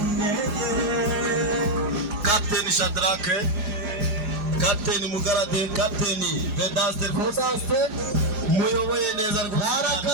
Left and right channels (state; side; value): late; left; 5.6 ms